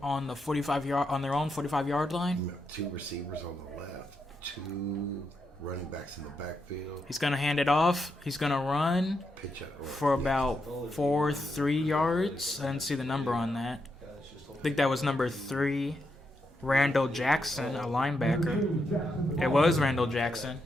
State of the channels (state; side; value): normal; both; correlation 0.83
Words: on the 45-yard on their own 45-yard line. 2 receivers on the left, 2 running backs in the backfield. He's gonna hand it off. He's gonna run Pitch up for about 3 yards. I didn't see the number on that. I think that was number 3, Randall Jackson, a linebacker. It was Randall Jackson.